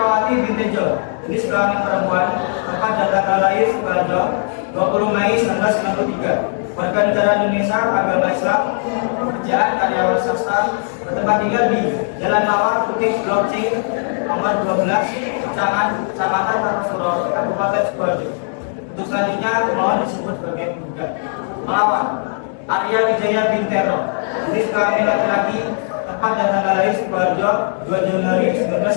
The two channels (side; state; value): right; silent; digital silence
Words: binti Tejo, jenis kelamin perempuan, tempat dan tanggal lahir Sukoharjo 20 Mei 1993, warga negara Indonesia, agama Islam, pekerjaan karyawan swasta, bertempat tinggal di Jalan Mawar Putih Blok C nomor 12, Kecamatan Kartosuro, Kabupaten Sukoharjo. Untuk selanjutnya pemohon disebut sebagai penggugat melawan Arya Wijaya bin Terno, jenis kelamin laki-laki, tempat dan tanggal lahir Sukoharjo 2 Januari